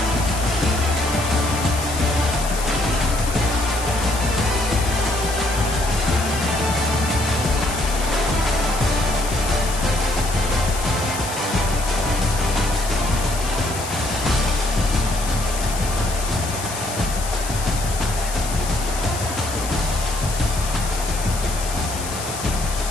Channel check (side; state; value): left; noise; hiss, 8 dB below the sound